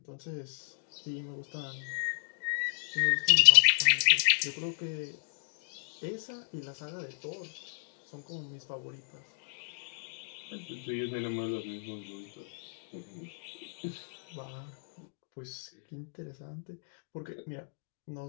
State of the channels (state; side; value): silent; right; digital silence